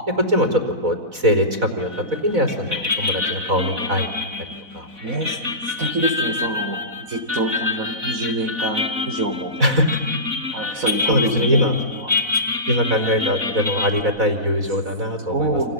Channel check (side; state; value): left; late; 4.0 ms